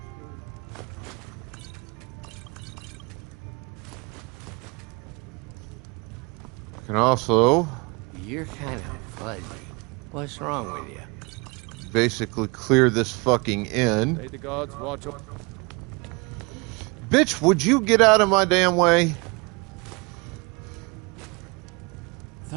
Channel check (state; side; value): quieter; left; 28.4 dB